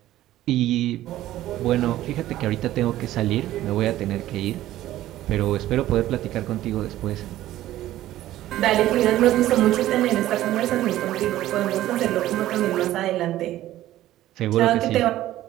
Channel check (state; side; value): quieter; left; 14.4 dB